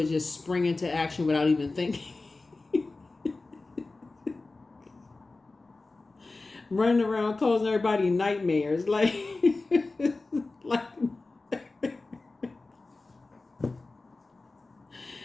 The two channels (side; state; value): right; quieter; 3.4 dB